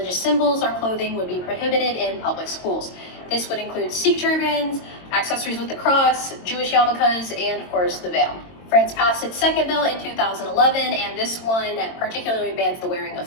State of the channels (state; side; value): late; right; 22 ms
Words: symbols or clothing would be prohibited in public schools. This would include Sikh turbans, accessories with the cross, Jewish yarmulkes, and of course the veil. France passed its second bill in 2011, and this one particularly bans the wearing of